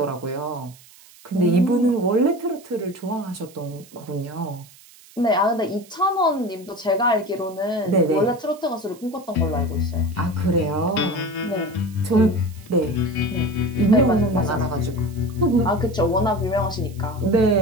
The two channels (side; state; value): right; noise; hiss, 24 dB below the sound